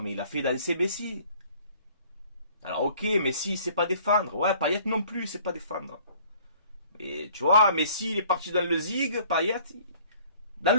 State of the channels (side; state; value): both; inverted; correlation -0.54